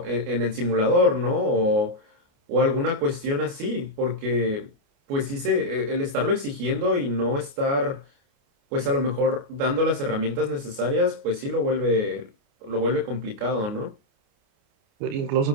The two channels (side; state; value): left; late; 29 ms